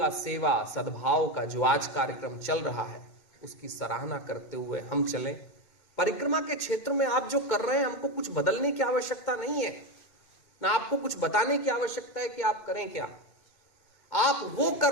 सेवा सद्भाव का जो आज कार्यक्रम चल रहा है, उसकी सराहना करते हुए हम चलें। परिक्रमा के क्षेत्र में आप जो कर रहे हैं, हमको कुछ बदलने की आवश्यकता नहीं है, ना आपको कुछ बताने की आवश्यकता है कि आप करें क्या। आप वो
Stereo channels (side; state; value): right; late; 2.2 ms